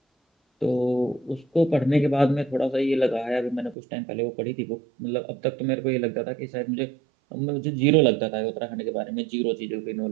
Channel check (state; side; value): drops out; left; at 3.8 s